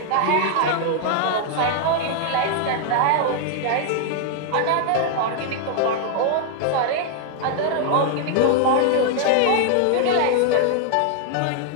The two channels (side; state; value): both; different; correlation 0.00